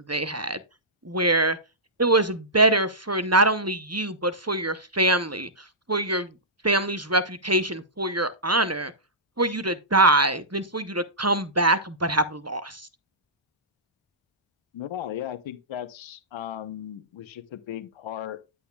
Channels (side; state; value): both; normal; correlation -0.17